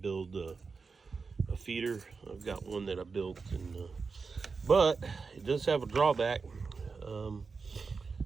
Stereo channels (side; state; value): left; quieter; 4.7 dB